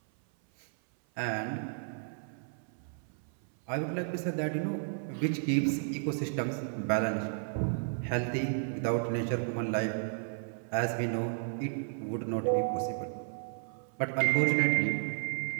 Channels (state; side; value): silent; left; 56 dB below the other